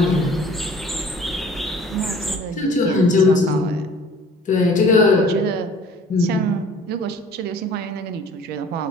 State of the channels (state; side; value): normal; both; correlation 0.49